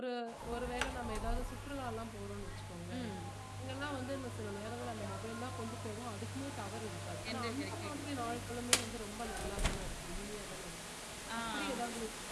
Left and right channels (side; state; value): both; identical; correlation 1.00